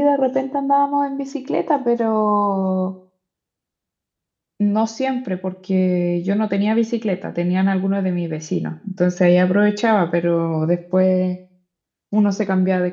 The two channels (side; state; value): both; identical; correlation 1.00